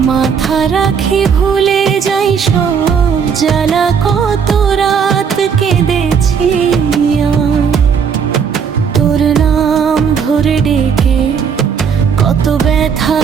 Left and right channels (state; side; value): quieter; left; 6.7 dB